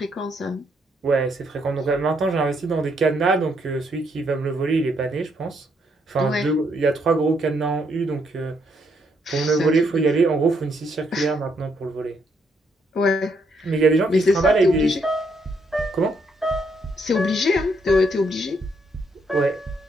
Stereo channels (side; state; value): both; normal; correlation 0.74